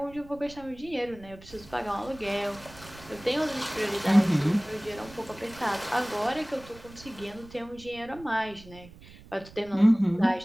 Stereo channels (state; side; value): noise; right; rumble, 20 dB below the sound